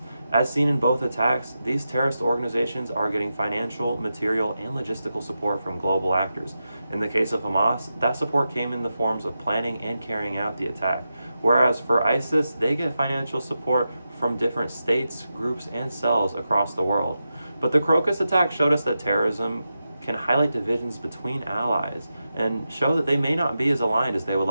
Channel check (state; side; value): inverted; both; correlation -0.89